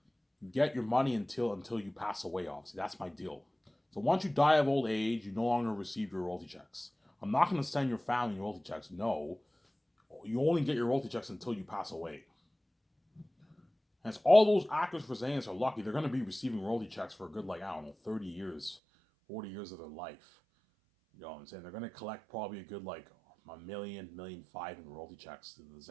your money until you pass away, obviously. That's my deal. So once you die of old age, you no longer receive your royalty checks. I'm not going to send your family your royalty checks. No. You only get your royalty checks until you pass away. And it's all those actors for Xanax are lucky. They're going to be receiving royalty checks for a good, 30 years, 40 years of their life. You know what I'm saying? They're going to collect probably a good, $1 million, $1.5 million in royalty checks to the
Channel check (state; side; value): drops out; left; at 18.8 s